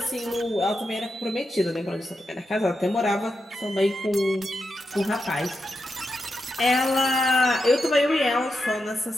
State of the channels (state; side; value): normal; both; correlation 0.86